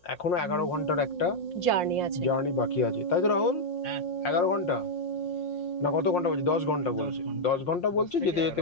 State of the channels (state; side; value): late; right; 5.6 ms